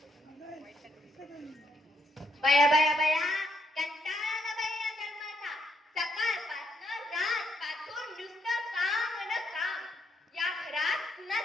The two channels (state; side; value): normal; both; correlation 0.76